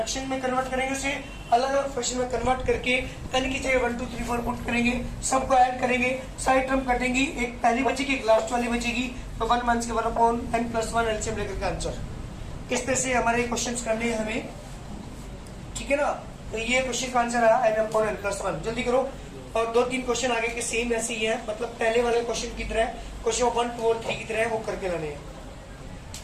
में कन्वर्ट करेंगे, उसे अलग अलग फ्रैक्शन में कन्वर्ट करके n की जगह 1 2 3 4 पुट करेंगे, सबको ऐड करेंगे, साइड टर्म कटेंगी, एक पहली बचेगी एक लास्ट वाली बचेगी, तो 1 माइनस के 1 अपॉन n प्लस 1 एलसीएम लेकर के आंसर। इस तरह से हमारे क्वेश्चन करने हैं हमें, ठीक है ना। तो ये क्वेश्चन का आंसर आया n अपॉन n प्लस 1। जल्दी करो, और 2-3 क्वेश्चन आगे के सेम ऐसे ही है, मतलब पहले वाले क्वेश्चन की तरह, क्वेश्चन 1 2 और 3 की तरह वो करके लाने हैं।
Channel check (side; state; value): both; identical; correlation 1.00